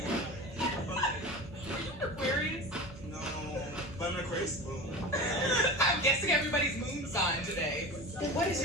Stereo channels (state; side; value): normal; both; correlation 0.31